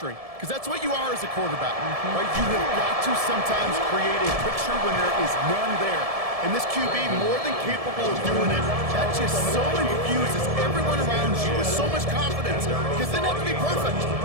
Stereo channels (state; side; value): late; left; 1.7 ms